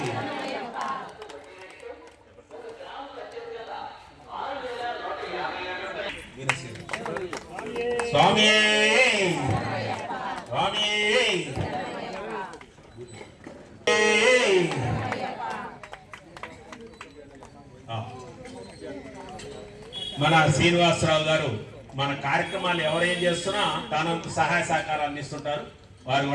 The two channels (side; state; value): both; identical; correlation 1.00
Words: స్వామి స్వామి మన శ్రీనివాసరావు గారు మన కార్యక్రమాలు ఎవరేం చేస్తున్నా తానంత సహాయ సహకారాలు అందిస్తుంటారు. వారు